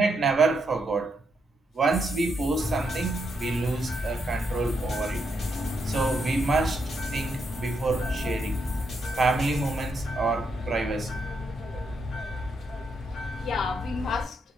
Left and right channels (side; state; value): both; normal; correlation 0.80